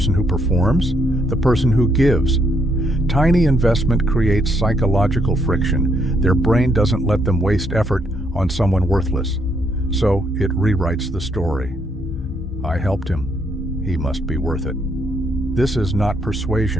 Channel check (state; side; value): normal; both; correlation 0.73